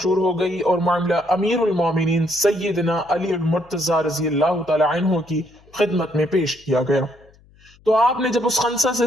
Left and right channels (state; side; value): noise; left; hum, 29 dB below the sound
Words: हो गई और मामला अमीरुल मोमिनीन सैयदना अली मुर्तजा रजी अल्लाह तआला अन्हु की खिदमत में पेश किया गया। तो आपने जब उस खंसा से